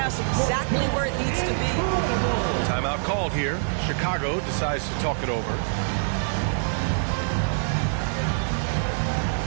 exactly where it needs to be. Timeout called here. Chicago decides to talk it over.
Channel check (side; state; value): left; silent; 58 dB below the other